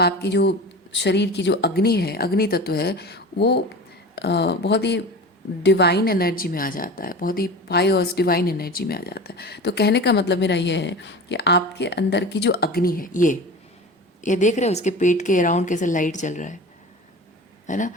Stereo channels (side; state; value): both; normal; correlation 0.33